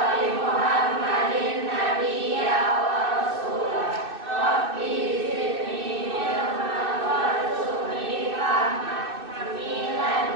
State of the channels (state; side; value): late; left; 2.6 ms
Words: li Muhammadin nabiyya wa rasulah rabbi zidni ilman warzuqni fahman hamilan